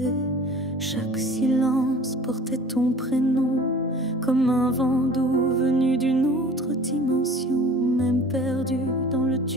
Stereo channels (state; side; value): normal; both; correlation 0.44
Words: Chaque silence portait ton prénom, comme un vent doux venu d'une autre dimension. Même perdu dans le